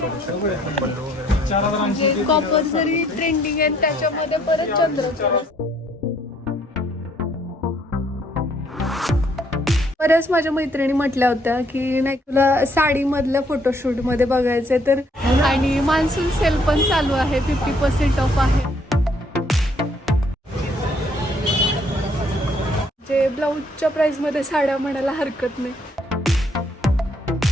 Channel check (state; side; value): normal; both; correlation 0.66